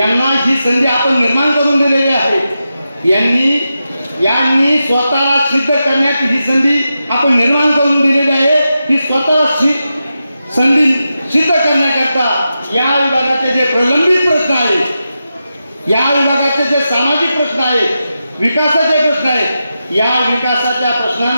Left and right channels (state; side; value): inverted; both; correlation -0.90